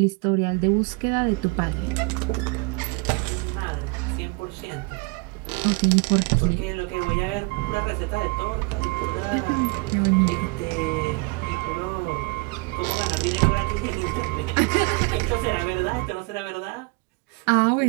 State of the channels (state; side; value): quieter; left; 28.7 dB